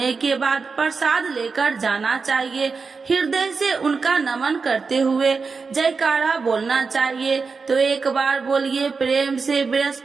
के बाद प्रसाद लेकर जाना चाहिए। हृदय से उनका नमन करते हुए जयकारा बोलना चाहिए। तो एक बार बोलिए प्रेम से,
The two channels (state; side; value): quieter; left; 4.8 dB